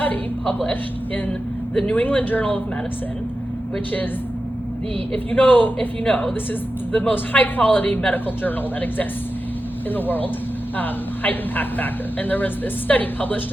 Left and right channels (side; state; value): both; normal; correlation 0.92